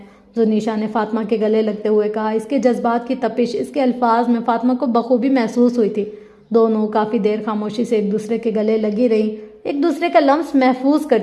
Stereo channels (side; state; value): both; identical; correlation 1.00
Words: زنیشا نے فاطمہ کے گلے لگتے ہوئے کہا۔ اس کے جذبات کی تپش اس کے الفاظ میں فاطمہ کو بخوبی محسوس ہوئی تھی۔ دونوں کافی دیر خاموشی سے ایک دوسرے کے گلے لگی رہیں، ایک دوسرے کا لمس محفوظ